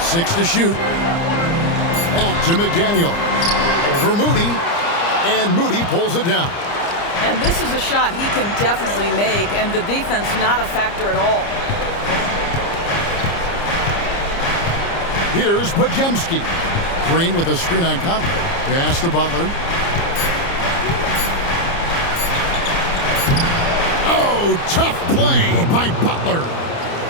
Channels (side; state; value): right; late; 29 ms